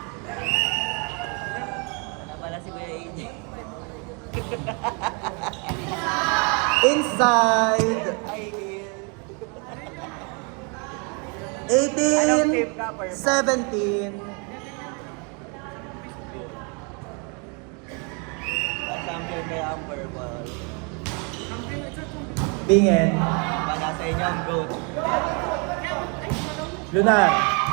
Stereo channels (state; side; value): quieter; left; 34.5 dB